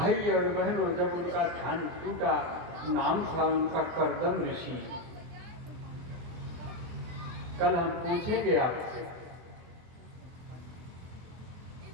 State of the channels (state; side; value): late; left; 23 ms